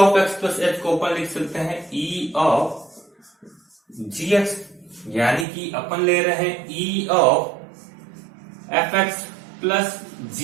x plus h को अपन लिख सकते हैं e of gx, यानी कि अपन ले रहे हैं e of fx plus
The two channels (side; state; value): left; drops out; at 5.5 s